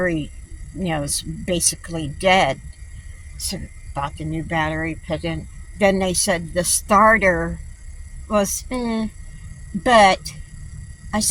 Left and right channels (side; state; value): both; identical; correlation 1.00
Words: is basically dead. So bought the new battery, put in. Then they said the starter was, but I